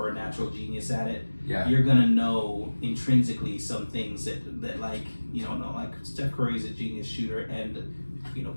a natural genius at it, you're gonna know intrinsically some things that like you don't know. Like Steph Curry's a genius shooter and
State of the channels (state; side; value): inverted; both; correlation -1.00